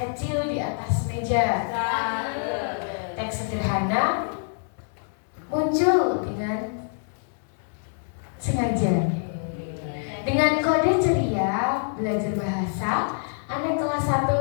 di atas meja. Teks sederhana muncul dengan sengaja. Dengan kode ceria belajar bahasa, anak kelas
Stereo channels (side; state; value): right; silent; 61 dB below the other